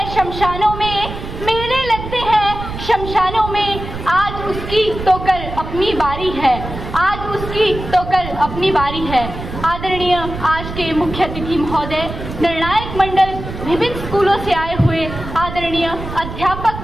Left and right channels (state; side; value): noise; right; rumble, 9 dB below the sound